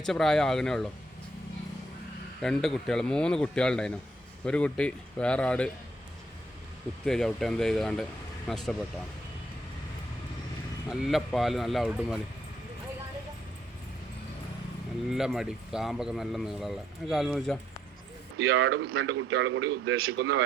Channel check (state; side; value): normal; both; correlation 0.72